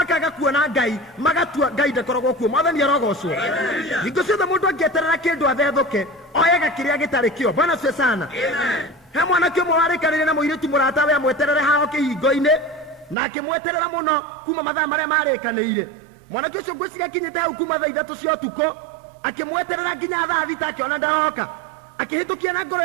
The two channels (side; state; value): left; drops out; at 13.2 s